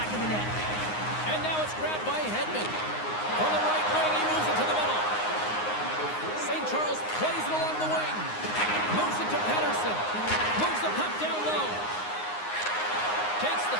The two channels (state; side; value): late; right; 9.6 ms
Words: of the net. And now it's grabbed by Hedman. From the right wing, he moves it to the middle. St. Charles plays it along the wing. Moves it to Pedersen. Moves the puck down low. Takes the